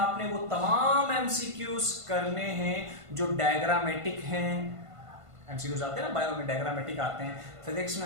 वो तमाम एमसीक्यूज करने हैं जो डायग्रामेटिक हैं। एमसीक्यूज आते हैं ना, बायो में डायग्रामेटिक आते हैं, फिजिक्स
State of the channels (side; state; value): left; late; 1.5 ms